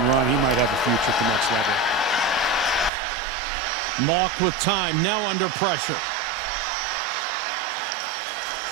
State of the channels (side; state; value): left; drops out; at 2.9 s